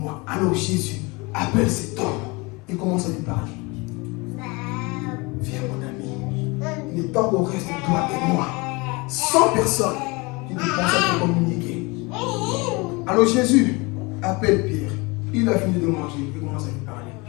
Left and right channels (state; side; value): quieter; right; 26.4 dB